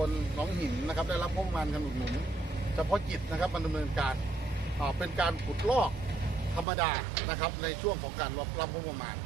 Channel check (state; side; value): drops out; left; at 6.7 s